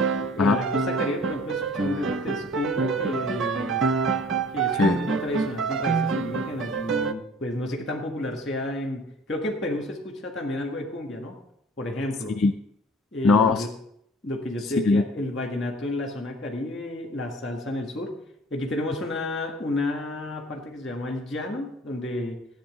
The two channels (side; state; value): both; normal; correlation 0.49